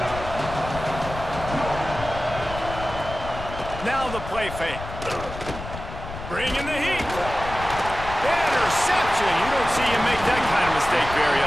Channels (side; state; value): left; noise; rumble, 10 dB below the sound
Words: Now the play fake. Bringing the heat. Interception. You don't see him make that kind of mistake very